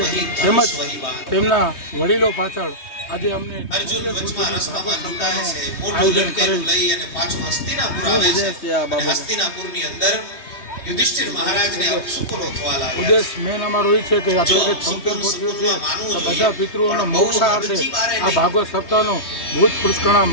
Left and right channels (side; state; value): right; late; 3.2 ms